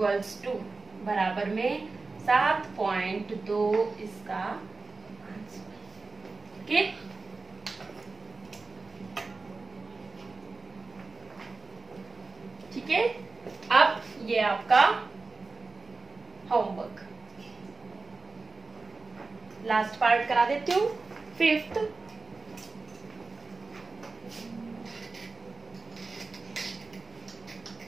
टू बराबर में 7.2 इसका आंसर। ओके, ठीक है। अब ये आपका होमवर्क। लास्ट पार्ट करा देती हूँ, 5th।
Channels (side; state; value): left; quieter; 3.8 dB